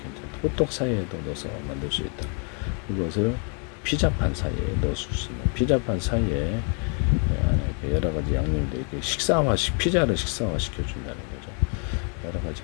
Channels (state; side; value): quieter; right; 38.9 dB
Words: 호떡 사이에도 넣어서 만들 수 있다. 이것을 피자판 사이에 넣을 수 있는 피자판 사이에 여러 가지 양념들 이렇게 피자를 식사화 시켜준다는 거죠. 여러 가지